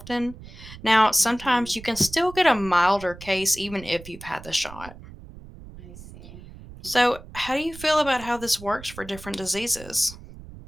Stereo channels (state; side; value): noise; right; rumble, 16 dB below the sound